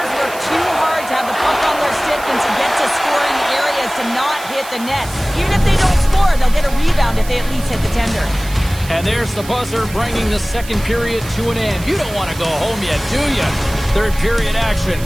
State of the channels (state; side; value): noise; right; hiss, 15 dB below the sound